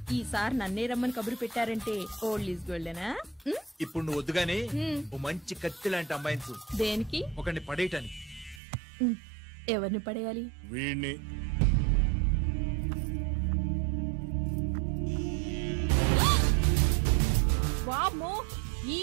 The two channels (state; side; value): drops out; left; at 8.6 s